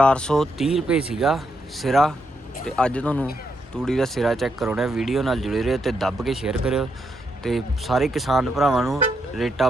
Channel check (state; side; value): normal; both; correlation 0.80